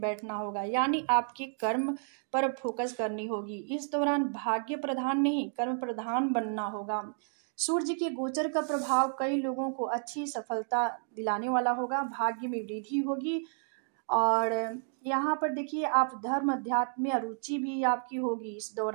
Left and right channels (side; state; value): left; silent; 57 dB below the other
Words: होगा। यानी आपके कर्म पर फोकस करनी होगी। इस दौरान भाग्य प्रधान नहीं कर्म प्रधान बनना होगा। सूर्य के गोचर का प्रभाव कई लोगों को अच्छी सफलता दिलाने वाला होगा। भाग्य में वृद्धि होगी और यहाँ पर देखिए आप धर्म अध्यात्म में रुचि भी आपकी होगी इस